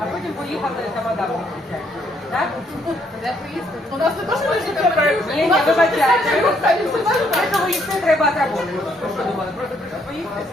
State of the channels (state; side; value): normal; both; correlation 0.70